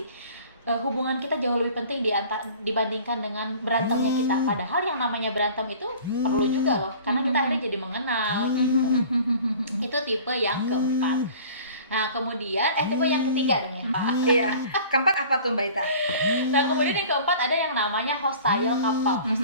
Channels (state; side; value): inverted; both; correlation -0.45